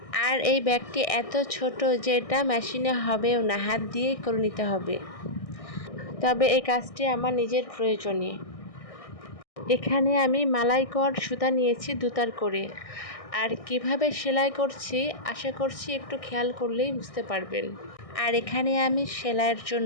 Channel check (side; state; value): right; late; 1.6 ms